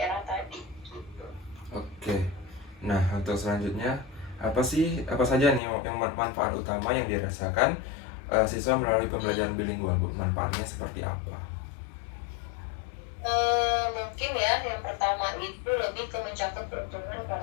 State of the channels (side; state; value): right; drops out; at 5.6 s